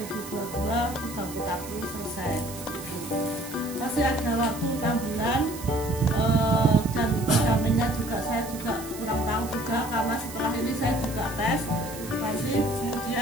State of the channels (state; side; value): noise; right; hiss, 13 dB below the sound